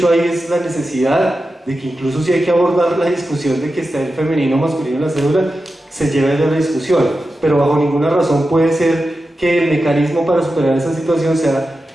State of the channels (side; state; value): both; normal; correlation 0.91